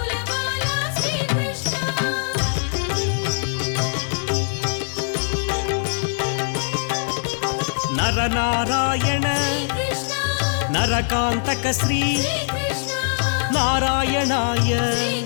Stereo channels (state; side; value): silent; right; digital silence